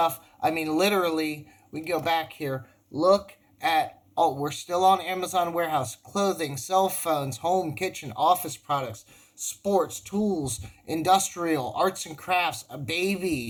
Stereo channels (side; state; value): both; identical; correlation 1.00